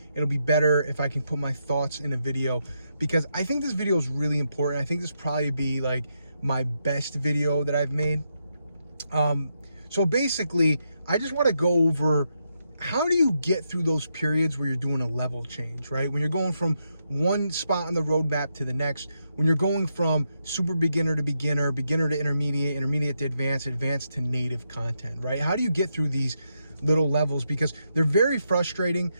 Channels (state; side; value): inverted; both; correlation -0.82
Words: it'll be better if I can put my thoughts in a video, because I think this video is really important. I think this probably be like my best video that I've made. So basically, I just want to go over how do you get through those periods where you're doing a level change, right? When you're going from one spot on the roadmap to the next, when you're going from super beginner to beginner, beginner to intermediate, intermediate to advanced, advanced to native content, right? How do you get through these little levels? Because they're very frustrating.